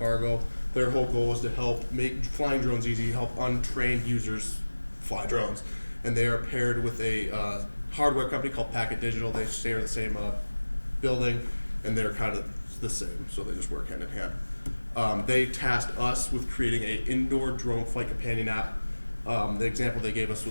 Their whole goal is to help make flying drones easy, help untrained users fly drones. And they are paired with a hardware company called Packet Digital. They share the same building, and they're kind of the same, so they just work hand in hand. They tasked us with creating an indoor drone flight companion app. The example they gave us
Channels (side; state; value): both; inverted; correlation -1.00